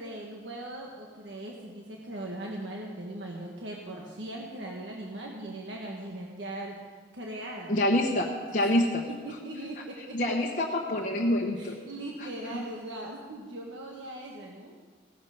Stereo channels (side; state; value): both; normal; correlation 0.34